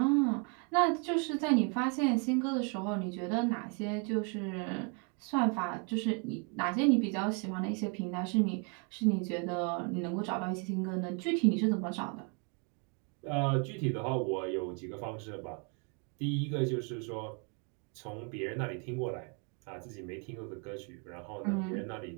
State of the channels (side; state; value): left; quieter; 35.7 dB